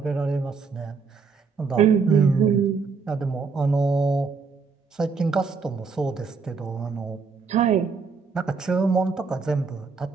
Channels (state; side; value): quieter; left; 5.1 dB